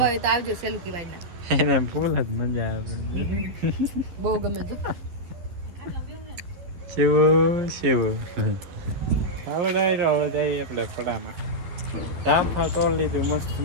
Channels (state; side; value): late; left; 11 ms